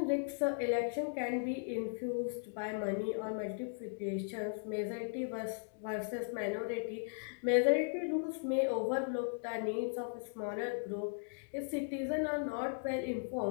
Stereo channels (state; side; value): silent; right; digital silence